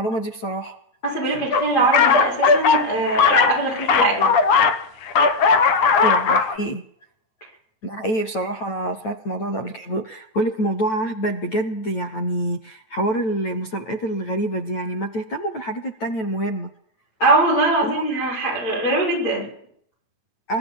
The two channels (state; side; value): late; right; 9.1 ms